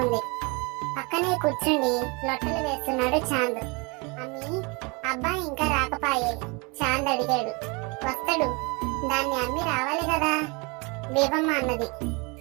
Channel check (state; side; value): quieter; left; 29.4 dB